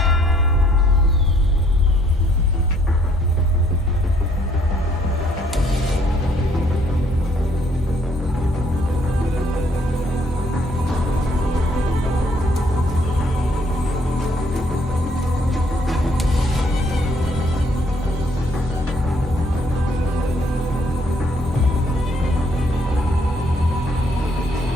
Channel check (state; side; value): normal; both; correlation 0.66